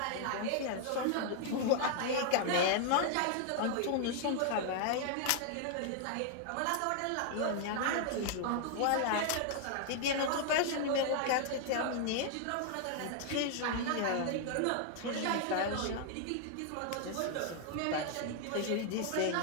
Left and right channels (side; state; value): both; different; correlation 0.00